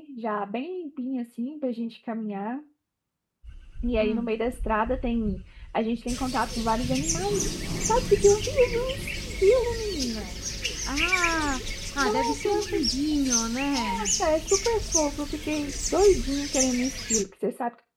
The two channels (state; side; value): identical; both; correlation 1.00